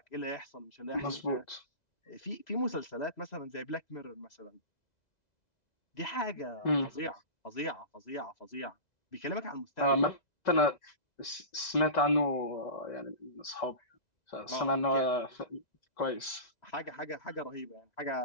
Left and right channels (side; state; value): right; late; 2.0 ms